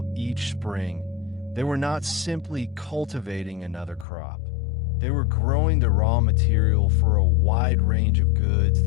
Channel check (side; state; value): right; drops out; at 4.0 s